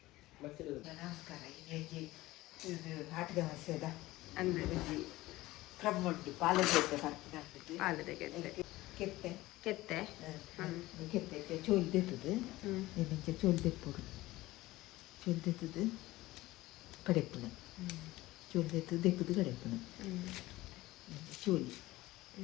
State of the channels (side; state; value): right; quieter; 18.2 dB